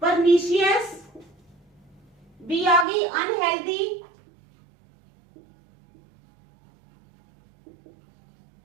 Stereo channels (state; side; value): drops out; left; at 2.9 s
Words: परनीशियस, बी आ गई अनहेल्दी,